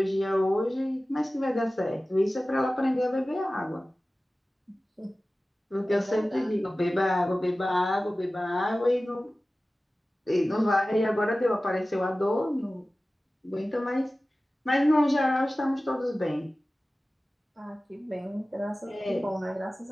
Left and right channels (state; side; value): normal; both; correlation 0.96